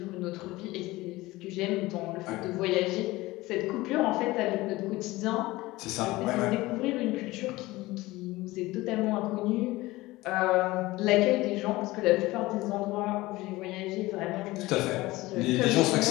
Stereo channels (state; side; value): quieter; right; 19.4 dB